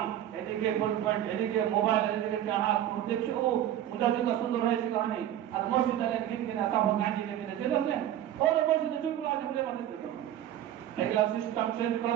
এদিকে ফুল পয়েন্ট, এদিকে মোবাইল, এদিকে চাহাত দেখছে, ও মুজাহিদটা সুন্দর হয়েছে কহানি। আর মসজিদে কিনা তখন গাঁজি লেগে চলে আসলেন, ওর মসজিদে চুপগুলো আছে বলে মাঝে এগুলা সিস্টেম চেঞ্জ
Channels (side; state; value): left; quieter; 11.7 dB